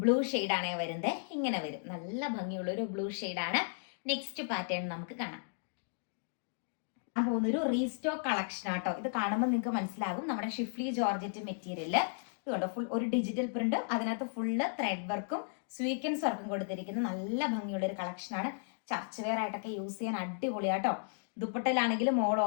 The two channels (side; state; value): right; silent; digital silence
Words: ബ്ലൂ ഷെയ്ഡാണ് വരുന്നത്. ഇങ്ങനെ വരും, നല്ല ഭംഗിയുള്ള ഒരു ബ്ലൂ ഷെയ്ഡാണ്. നെക്സ്റ്റ് പാറ്റേൺ നമുക്ക് കാണാം. പോകുന്നൊരു റീസ്റ്റോക്ക് കളക്ഷൻ ആട്ടോ. ഇത് കാണുമ്പോൾ നിങ്ങൾക്ക് മനസ്സിലാകും നമ്മുടെ ഷിഫ്ലി ജോർജറ്റ് മെറ്റീരിയല്. ഇതുകൊണ്ട് ഫുൾ ഒരു ഡിജിറ്റൽ പ്രിന്റും അതിനകത്ത് ഫുള്ള് ത്രെഡ് വർക്കും സ്വീക്വൻസ് വർക്കും കൊടുത്തിരിക്കുന്ന നല്ല ഭംഗിയുള്ള ഒരു കളക്ഷനാണ്. ചർച്ച് വെയർ ആയിട്ടൊക്കെ യൂസ് ചെയ്യാൻ അടിപൊളിയാട്ടോ. ദുപ്പട്ടയിലാണെങ്കിലും ഓൾ